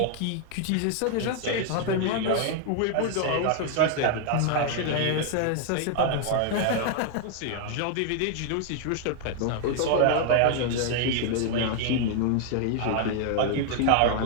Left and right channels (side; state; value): both; different; correlation 0.00